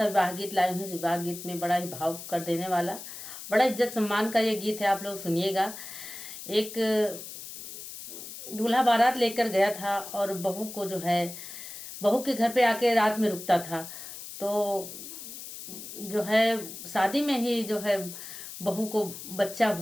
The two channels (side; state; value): left; noise; hiss, 11 dB below the sound